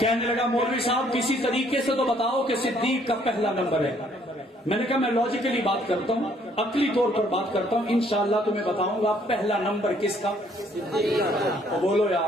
لگا مولوی صاحب کسی طریقے سے تو بتاؤ کہ صدیق کا پہلا نمبر ہے۔ میں نے کہا میں لاجیکلی بات کرتا ہوں، عقلی طور پر بات کرتا ہوں، انشاءاللہ تمہیں بتاؤں گا پہلا نمبر کس کا۔ تو بولو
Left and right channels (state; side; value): normal; both; correlation 0.64